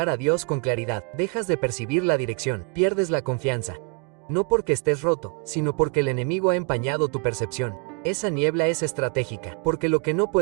a Dios con claridad, dejas de percibir la dirección, pierdes la confianza. No porque estés roto, sino porque el enemigo ha empañado tu percepción. Esa niebla es estratégica, porque lo que no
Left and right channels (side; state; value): left; quieter; 32.0 dB